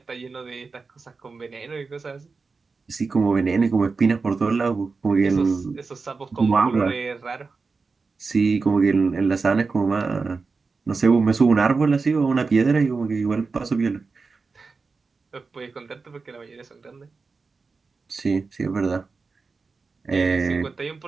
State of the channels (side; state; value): left; quieter; 4.4 dB